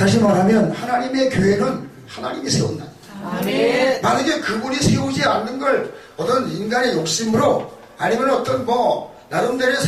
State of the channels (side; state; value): both; identical; correlation 1.00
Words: 말하면 하나님의 교회는 하나님이 세운다. 만약에 그분이 세우지 않는 걸 어떤 인간의 욕심으로 아니면 어떤 나름대로의